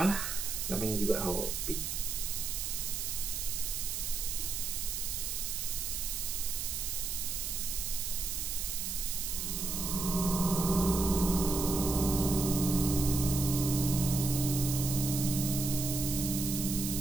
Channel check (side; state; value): right; noise; hiss, 3 dB below the sound